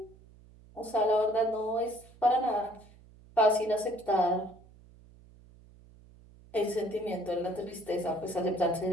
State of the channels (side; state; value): right; noise; hum, 24 dB below the sound